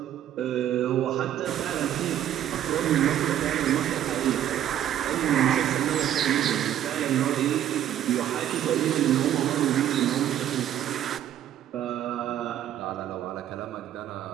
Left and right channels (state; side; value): quieter; left; 11.2 dB